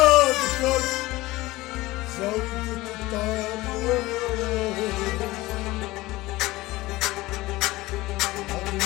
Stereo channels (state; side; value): quieter; right; 19.1 dB